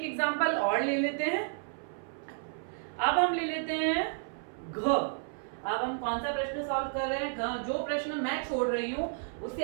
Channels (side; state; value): left; silent; 57 dB below the other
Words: एग्जांपल और ले लेते हैं। अब हम ले लेते हैं घ। अब हम कौन सा प्रश्न सॉल्व कर रहे हैं? घ। जो प्रश्न मैं छोड़ रही हूं उसे